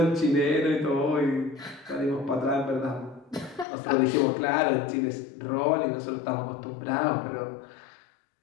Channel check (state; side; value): drops out; right; at 3.7 s